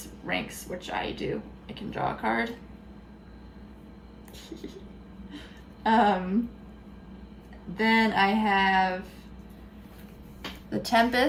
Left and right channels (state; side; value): identical; both; correlation 1.00